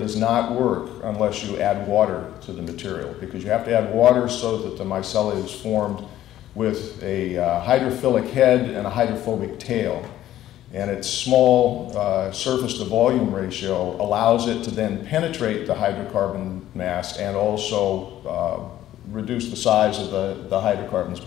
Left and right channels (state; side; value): quieter; right; 13.1 dB